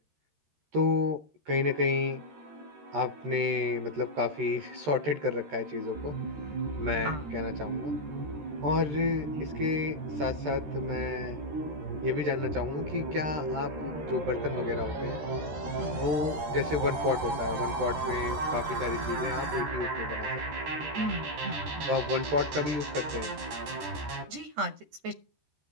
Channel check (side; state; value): left; late; 13 ms